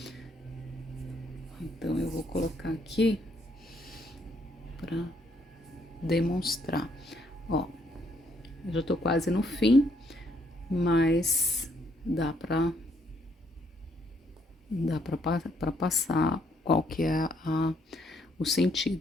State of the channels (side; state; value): both; normal; correlation 0.70